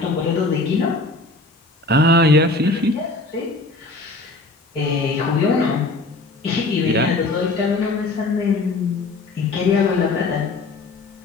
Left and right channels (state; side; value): quieter; right; 3.3 dB